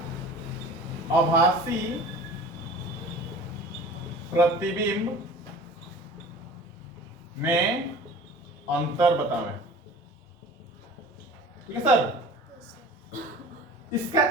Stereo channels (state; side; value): normal; both; correlation 0.41